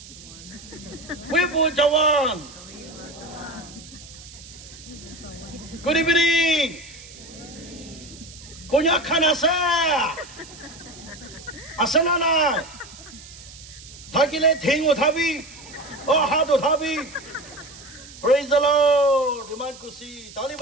Wibu Jawan. Good evening. Konyak khan asa. Asana na. Thakile thing uthabi. Oh hath uthabi. Praise the Lord. Iman kushi. Tali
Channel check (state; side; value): noise; right; hiss, 18 dB below the sound